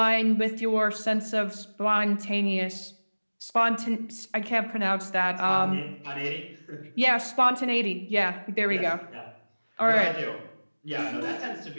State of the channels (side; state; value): both; inverted; correlation -1.00